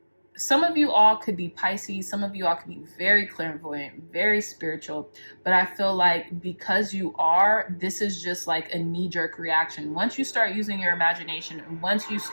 some of you all could be Pisces. Some of you all could be very clairvoyant, very spiritual. But I feel like because you are, this is just like a knee-jerk reaction. Once you start using your imagination and once you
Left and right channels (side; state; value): both; inverted; correlation -1.00